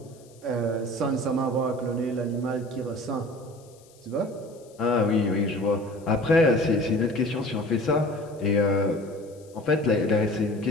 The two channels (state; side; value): noise; left; hiss, 28 dB below the sound